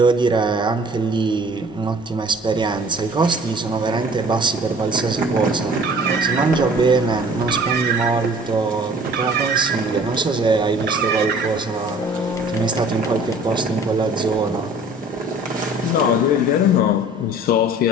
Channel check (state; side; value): normal; both; correlation 0.50